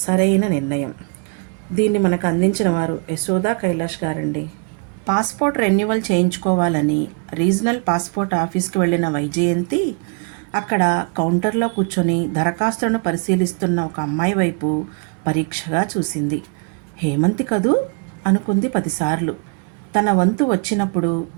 సరైన నిర్ణయం. దీన్ని మనకు అందించిన వారు యశోదా కైలాష్ గారండి. పాస్పోర్ట్ రెన్యువల్ చేయించుకోవాలని రీజనల్ పాస్పోర్ట్ ఆఫీస్కి వెళ్ళిన వైజయంతి అక్కడ కౌంటర్లో కూర్చొని దరఖాస్తులను పరిశీలిస్తున్న ఒక అమ్మాయి వైపు పరీక్షగా చూసింది. హేమంతి కదూ అనుకుంది 10 సార్లు. తన వంతు వచ్చినప్పుడు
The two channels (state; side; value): quieter; left; 34.6 dB